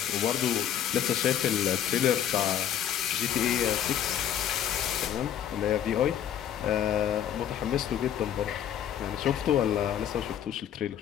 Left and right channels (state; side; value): quieter; right; 10.0 dB